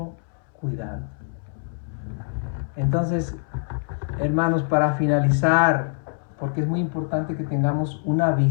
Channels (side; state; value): right; silent; 62 dB below the other